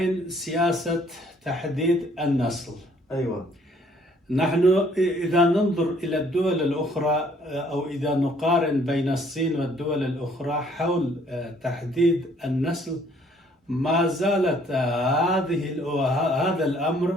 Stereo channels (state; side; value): normal; both; correlation 0.62